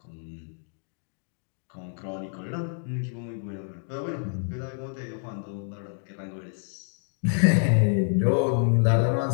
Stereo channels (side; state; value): right; silent; 59 dB below the other